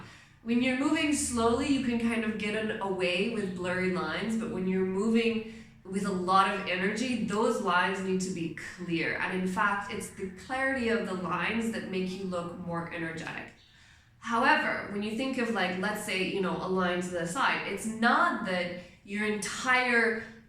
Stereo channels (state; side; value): identical; both; correlation 1.00